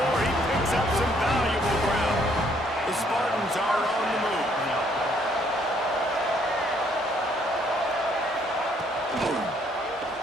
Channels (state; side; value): normal; both; correlation 0.67